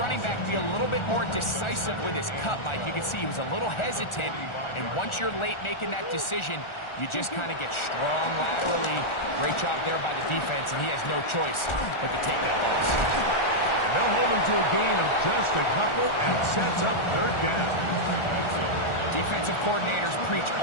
back be a little bit more decisive with his cut, Mike. You can see he was a little hesitant, and once you're late making that decision, you just kind of get strong laterally. Great job there by the defense, and he has no choice but to take that loss. And they'll hold him to a gain of just a couple and sets up third down. Defensive coordinators preach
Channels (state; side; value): late; right; 1.4 ms